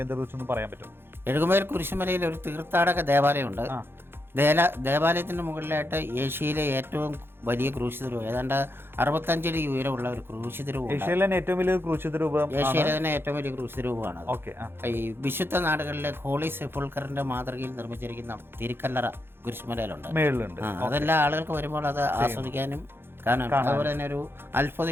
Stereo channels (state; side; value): late; left; 0.11 ms